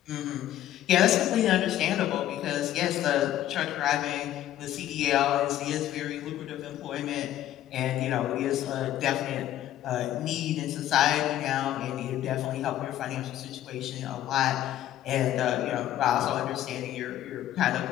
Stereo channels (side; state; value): right; quieter; 12.7 dB